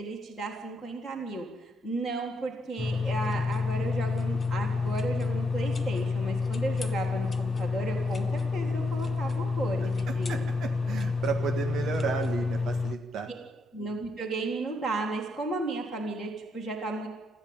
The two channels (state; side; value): normal; both; correlation 0.79